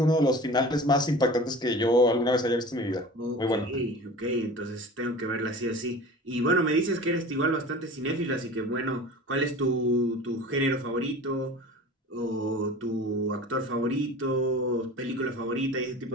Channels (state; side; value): normal; both; correlation 0.38